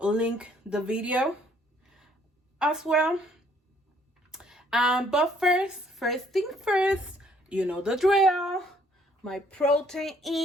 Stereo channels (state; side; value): normal; both; correlation 0.64